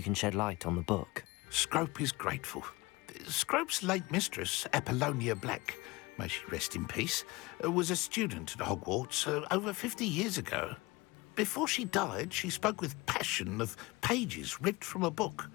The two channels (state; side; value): quieter; right; 22.7 dB